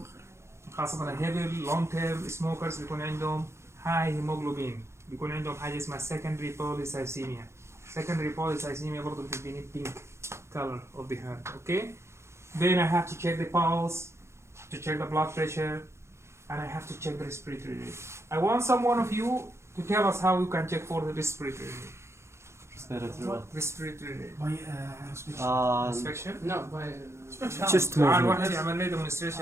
خاصة heavy long term smokers بيكون عندهم high hemoglobin. بيكون عندهم حاجة اسمها secondary polycythemia. Secondary polycythemia برضو بتديني pink color of the hand. Okay. Then I have to check the pulse, to check the blood pressure, and I have to check the respiratory rate. I want someone of you to tell us how you can check for the respiratory rate. Respiratory rate. By Inspection? No, by Just تعال واحد يعمل لي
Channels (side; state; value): left; late; 0.13 ms